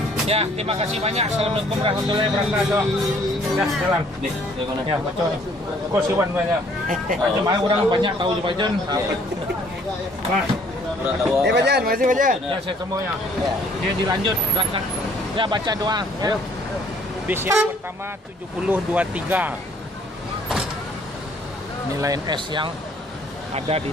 Ya, terima kasih banyak. Assalamualaikum warahmatullahi wabarakatuh. Ya, jalan. Ya, baca nih. Kok siwan banyak. Jemaah orang banyak tahu di Bajan. Nah. Bajan, masih Bajan. Ya, saya semuanya. Dia dilanjut berangkat. Ya, baca doa. Ya. Bis yang pertama 7023. Nilai NS yang ada di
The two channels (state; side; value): normal; both; correlation 0.60